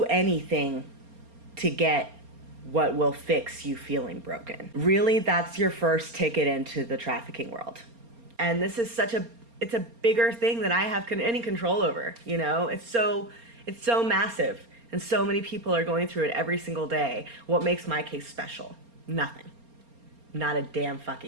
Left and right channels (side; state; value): left; late; 4.3 ms